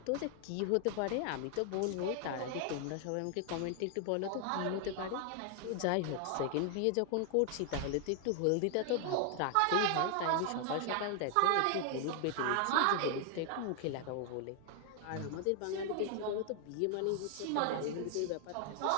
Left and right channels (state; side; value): different; both; correlation 0.00